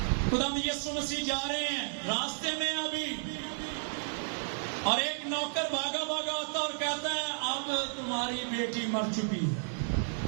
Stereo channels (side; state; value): left; silent; digital silence